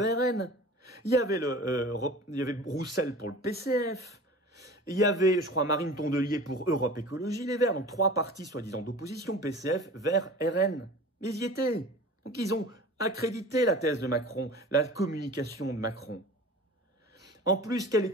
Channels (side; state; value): both; normal; correlation 0.39